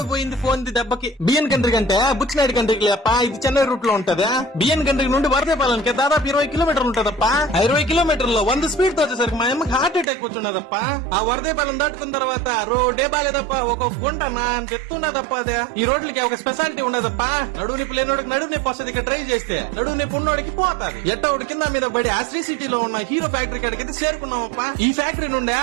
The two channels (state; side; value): drops out; left; at 10.1 s